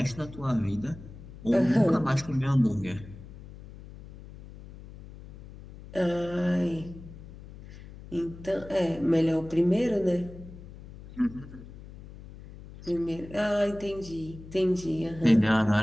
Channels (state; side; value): noise; left; hum, 16 dB below the sound